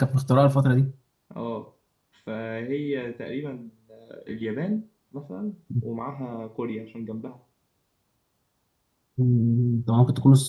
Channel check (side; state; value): both; identical; correlation 1.00